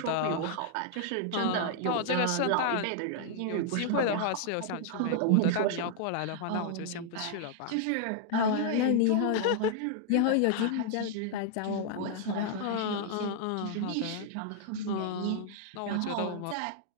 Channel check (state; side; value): different; both; correlation 0.00